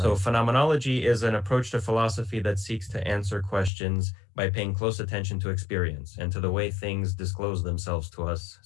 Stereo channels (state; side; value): drops out; right; at 3.7 s